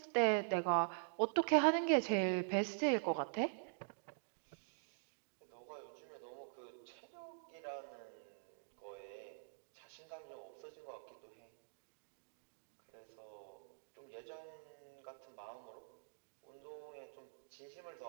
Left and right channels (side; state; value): left; silent; digital silence